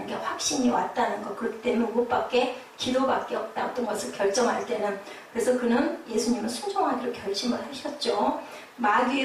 게 확신이 왔다는 거. 그렇기 때문에 그것밖에, 기도밖에 없다. 어떤 것을 결정할 때는. 그래서 그는, 예수님은 순종하기로 결심을 하셨죠.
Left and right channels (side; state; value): both; identical; correlation 1.00